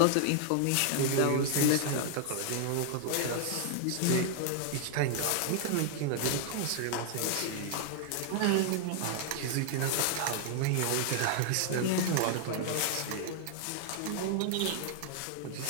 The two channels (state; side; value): different; both; correlation 0.00